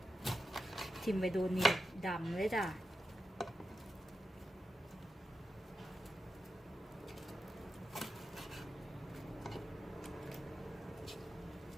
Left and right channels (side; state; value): both; normal; correlation 0.88